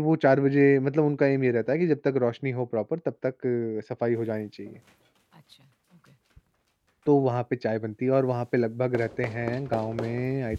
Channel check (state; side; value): identical; both; correlation 1.00